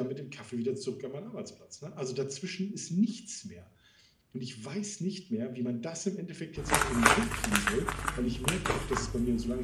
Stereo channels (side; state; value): both; identical; correlation 1.00